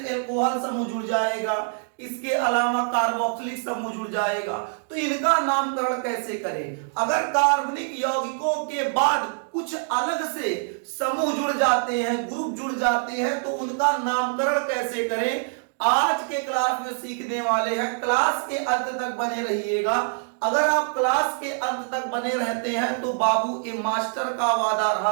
एल्कोहल समूह जुड़ जाएगा, इसके अलावा कार्बोक्सिलिक समूह जुड़ जाएगा, तो इनका नामकरण कैसे करें। अगर कार्बनिक यौगिकों के बाद कुछ अलग से समूह जुड़ जाते हैं, ग्रुप जुड़ जाते हैं, तो उनका नामकरण कैसे करें, आज के क्लास में सीखने वाले हैं। क्लास के अंत तक बने रहिएगा। अगर आप क्लास के अंत तक बने रहते हैं तो बाबू ए मास्टर का वादा रहा,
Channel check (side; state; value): left; silent; digital silence